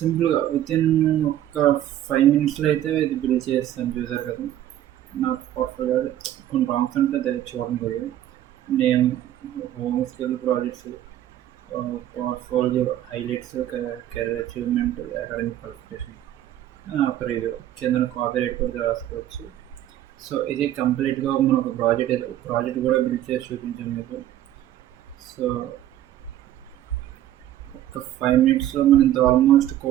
వితిన్ ఒక 5 మినిట్స్లో అయితే ఇది బిల్డ్ చేస్తాను. చూసారు కదా, నాకు పోర్ట్ఫోలియో కొన్ని ప్రాంప్ట్స్ ఉంటే అది చూడండి కొద్దిగా. Name, home skill projects, portfolio highlights, career achievement, academic qualification, ఒక రివ్యూ కింద కాపీ రైట్ కూడా రాసుకోవచ్చు. సో ఇది కంప్లీట్గా మనం ఒక ప్రాజెక్ట్ కూడా బిల్డ్ చేసి చూపించాం మీకు. సో ఒక 5 మినిట్స్లో మనం ఇంత ఆల్మోస్ట్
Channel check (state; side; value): quieter; left; 12.4 dB